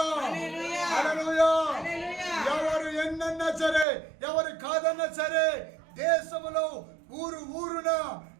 హల్లెలూయా. హల్లెలూయా. హల్లెలూయా. ఎవరు ఎన్నన్నా సరే, ఎవరు కాదన్నా సరే, దేశములో ఊరు ఊరున,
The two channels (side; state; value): left; drops out; at 3.9 s